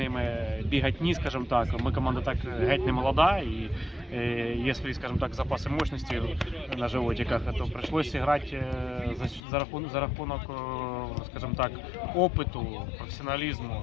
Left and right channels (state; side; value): drops out; right; at 9.4 s